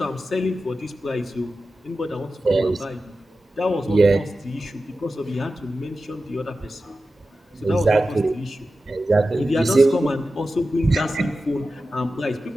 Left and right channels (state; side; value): normal; both; correlation 0.93